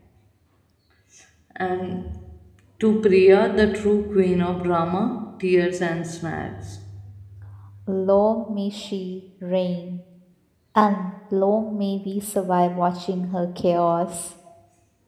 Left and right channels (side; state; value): both; identical; correlation 1.00